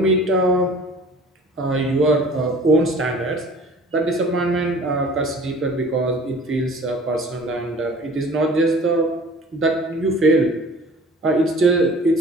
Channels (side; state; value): both; normal; correlation 0.46